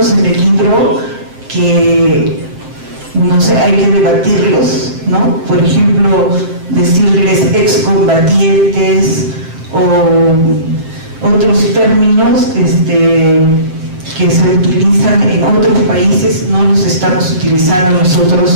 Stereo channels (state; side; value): late; left; 7.6 ms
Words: en el libro que, no sé, hay que debatirlos, ¿no? Por ejemplo, decirles excombatientes o otros términos que se utilizan en otros países, no los estamos utilizando